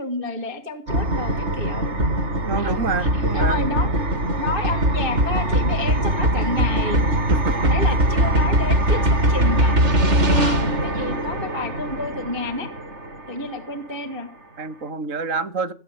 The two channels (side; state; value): left; late; 3.3 ms